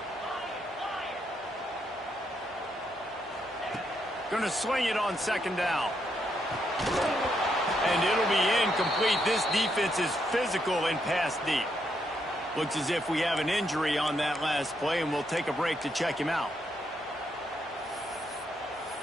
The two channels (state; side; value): normal; both; correlation 0.78